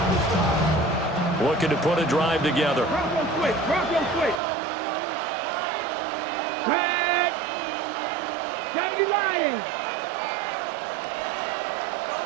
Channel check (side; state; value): left; drops out; at 4.4 s